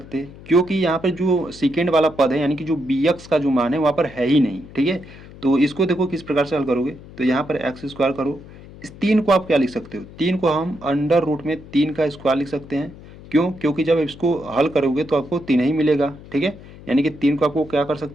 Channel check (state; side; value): noise; left; hum, 18 dB below the sound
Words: क्योंकि यहाँ पर जो सेकेंड वाला पद है यानी कि जो bx का जो मान है वहाँ पर है ही नहीं। ठीक है, तो इसको देखो किस प्रकार से हल करोगे, तो यहाँ पर x² करो, इस 3 को आप क्या लिख सकते हो, 3 को हम अंडर रूट में 3 का स्क्वायर लिख सकते हैं। क्यों, क्योंकि जब इसको हल करोगे तो आपको 3 ही मिलेगा। ठीक है, यानी कि 3 को आपको क्या कर